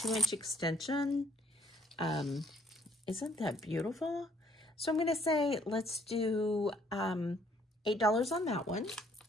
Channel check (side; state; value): both; normal; correlation 0.65